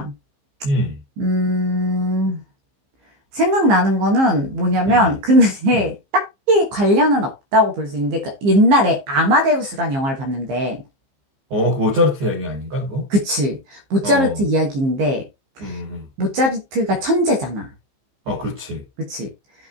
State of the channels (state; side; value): late; left; 15 ms